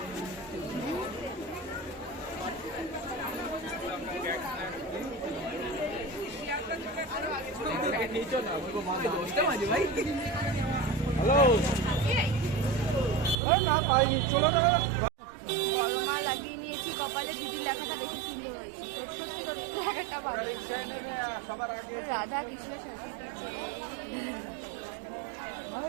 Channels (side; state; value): left; drops out; at 13.4 s